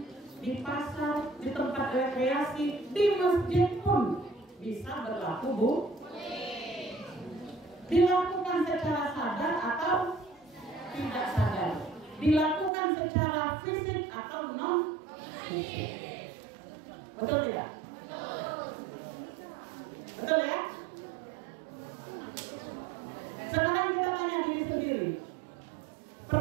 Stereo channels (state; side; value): drops out; left; at 12.7 s